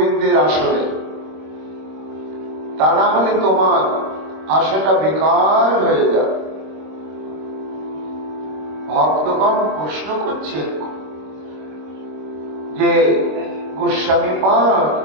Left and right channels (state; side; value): late; left; 26 ms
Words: আসরে। তা না হলে তোমার আশাটা বেকার হয়ে যাবে। ভক্তগণ প্রশ্ন করছে যে গোস্বামী পাদ,